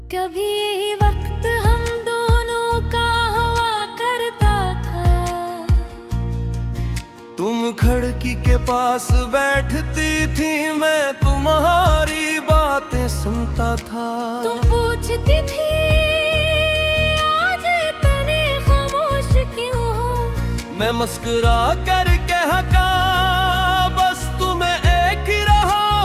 कभी वक्त हम दोनों का हुआ करता था, तुम खिड़की के पास बैठती थी, मैं तुम्हारी बातें सुनता था। तुम पूछती थी आज इतने खामोश क्यों हो, मैं मुस्कुरा कर कहता बस तुम्हें एक ही रहा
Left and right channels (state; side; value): identical; both; correlation 1.00